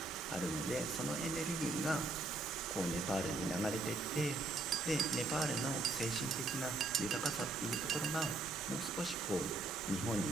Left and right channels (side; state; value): left; quieter; 3.1 dB